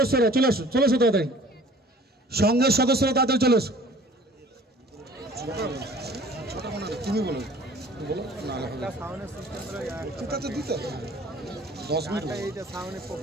চলে আসো তাড়াতাড়ি সংঘের সদস্যরা তাড়াতাড়ি চলে আসো। তুমি বলো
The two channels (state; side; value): normal; both; correlation 0.50